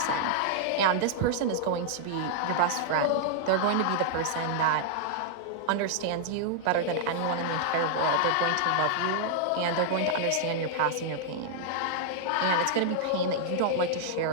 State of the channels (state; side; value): different; both; correlation -0.01